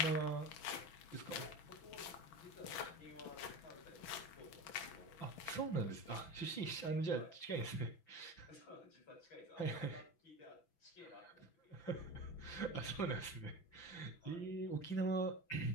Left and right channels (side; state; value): right; late; 5.9 ms